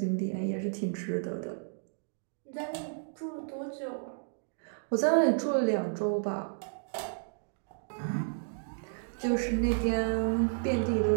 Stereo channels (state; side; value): silent; left; digital silence